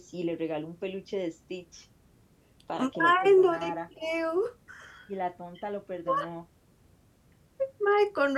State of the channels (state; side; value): identical; both; correlation 1.00